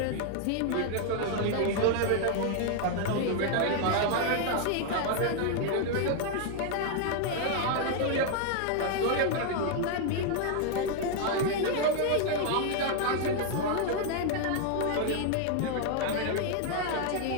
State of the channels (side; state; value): both; different; correlation 0.00